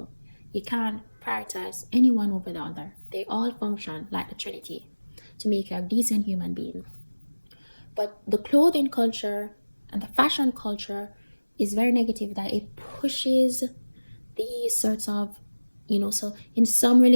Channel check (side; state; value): both; inverted; correlation -1.00